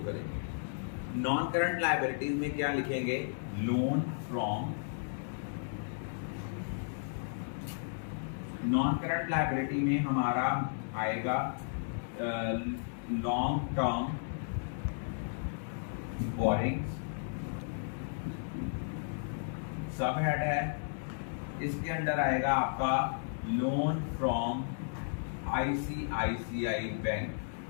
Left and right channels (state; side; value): silent; right; digital silence